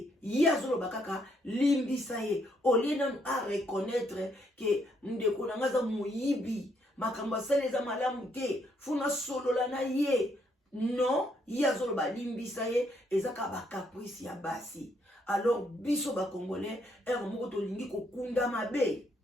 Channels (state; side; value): normal; both; correlation 0.73